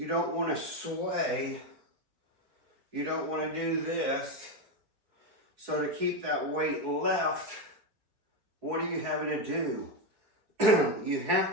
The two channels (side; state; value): left; late; 4.3 ms